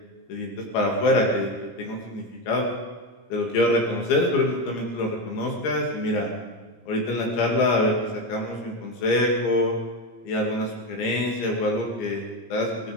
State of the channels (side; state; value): right; late; 17 ms